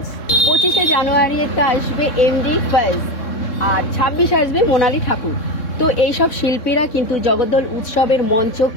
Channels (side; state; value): right; late; 3.6 ms